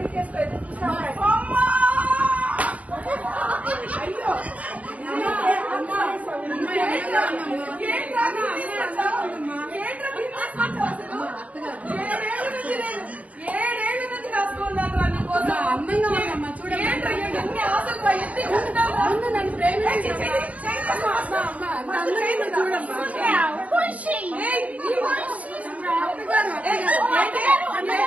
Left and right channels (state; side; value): late; left; 0.069 ms